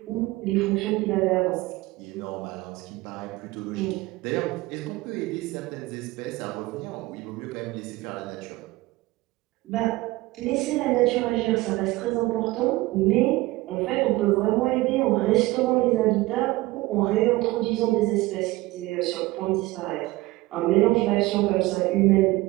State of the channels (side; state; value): left; quieter; 19.7 dB